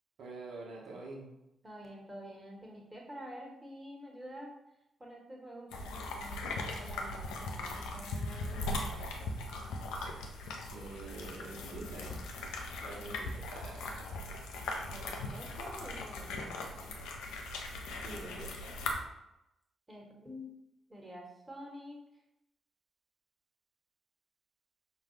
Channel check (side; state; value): both; normal; correlation 0.62